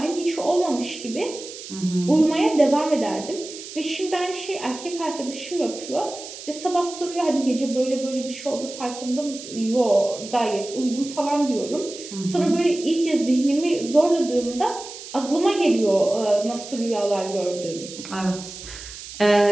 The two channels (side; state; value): right; noise; hiss, 13 dB below the sound